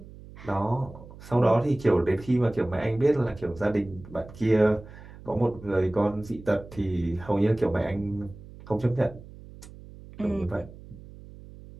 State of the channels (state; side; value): noise; right; hum, 18 dB below the sound